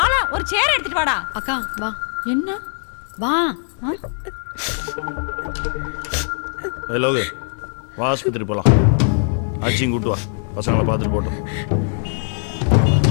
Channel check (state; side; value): silent; right; digital silence